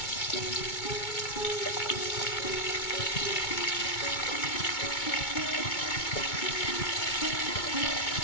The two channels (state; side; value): late; right; 2.2 ms